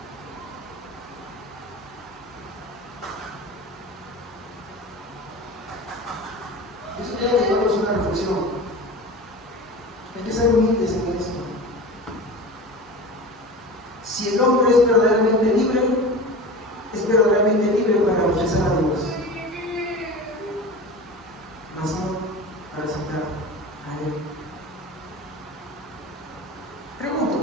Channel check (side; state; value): both; normal; correlation 0.33